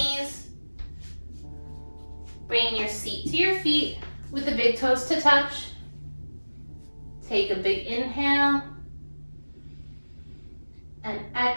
Bringing your seat to your feet with the big toes to touch. Take a big inhale. And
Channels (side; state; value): both; inverted; correlation -1.00